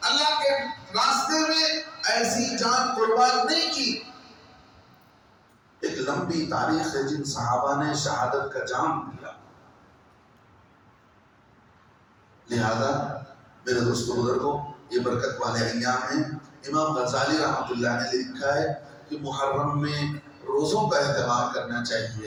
اللہ کے راستے میں ایسی جان قربان نہیں کی. ایک لمبی تاریخ ہے جن صحابہ نے شہادت کا جام دیا. لہذا میرے دوستو بزرگوں یہ برکت والے ایام ہیں. امام غزالی رحمۃ اللہ نے لکھا ہے کہ محرم میں روزوں کا اہتمام کرنا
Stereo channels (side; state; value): both; identical; correlation 1.00